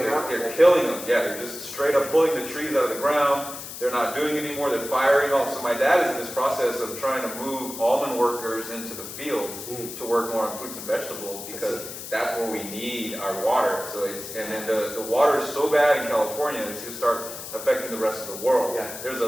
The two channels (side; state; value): left; noise; hiss, 10 dB below the sound